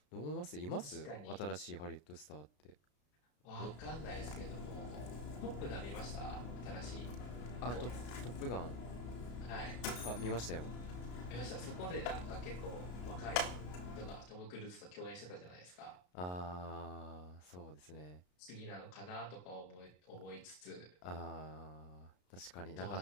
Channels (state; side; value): late; right; 33 ms